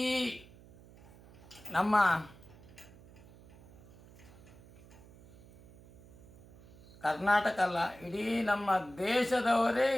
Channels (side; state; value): right; noise; hum, 22 dB below the sound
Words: ನಮ್ಮ ಕರ್ನಾಟಕ ಅಲ್ಲ, ಇಡೀ ನಮ್ಮ ದೇಶದವರೇ